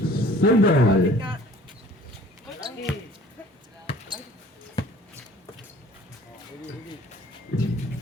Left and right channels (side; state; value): both; normal; correlation 0.51